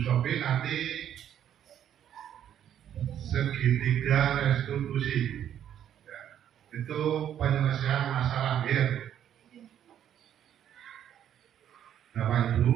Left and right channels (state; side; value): quieter; left; 10.2 dB